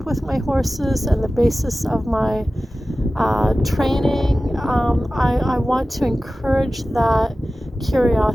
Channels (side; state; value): both; normal; correlation 0.96